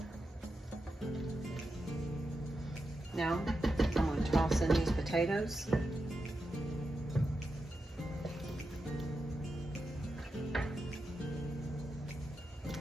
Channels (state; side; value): normal; both; correlation 0.88